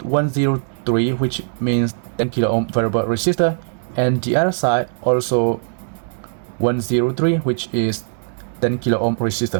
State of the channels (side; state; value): left; silent; 66 dB below the other